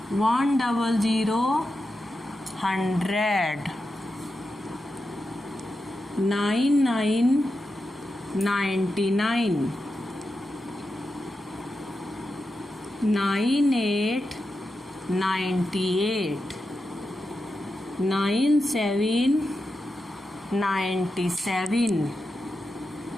100 100 99 99 98 98 97 97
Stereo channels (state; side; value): normal; both; correlation 0.89